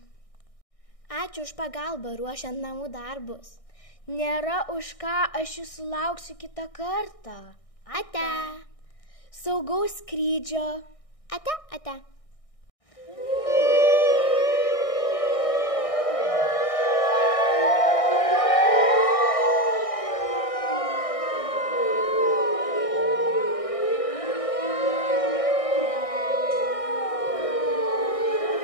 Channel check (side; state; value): right; late; 1.6 ms